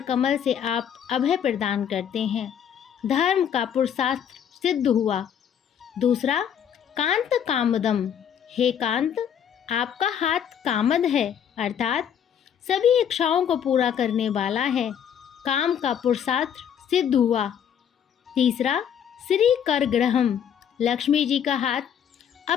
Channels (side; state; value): right; quieter; 8.7 dB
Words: कमल से आप अभय प्रदान करते हैं। धर्म का पुरुषार्थ सिद्ध हुआ। दूसरा, कांत कामदम, हे कांत आपका हाथ कामद है, अर्थात सभी इच्छाओं को पूरा करने वाला है। काम का पुरुषार्थ सिद्ध हुआ। तीसरा, श्री कर ग्रहम, लक्ष्मी जी का हाथ